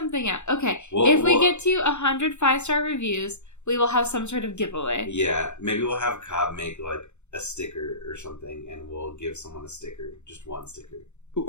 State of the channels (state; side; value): late; right; 0.83 ms